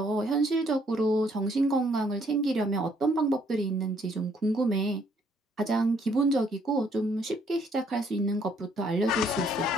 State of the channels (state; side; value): normal; both; correlation 0.67